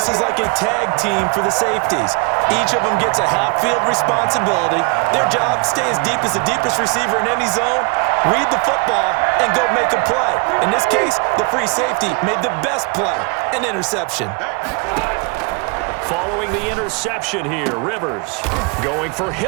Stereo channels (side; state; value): left; quieter; 31.5 dB